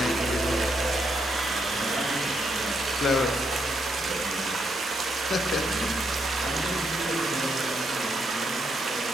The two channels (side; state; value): both; normal; correlation 0.78